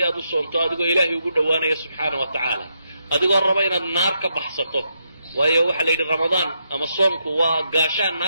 aad u soonto adigoo ilaahay ugu dhowaanaya subxaana wa tacaala, adigoo raba inaad naar ka baxsato. waayo waxaa la yidhi ramadaan ama soomku waa gaashaan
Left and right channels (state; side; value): inverted; both; correlation -0.81